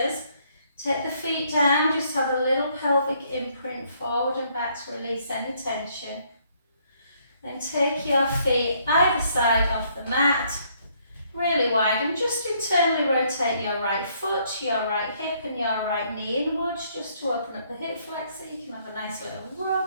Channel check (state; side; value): inverted; both; correlation -0.68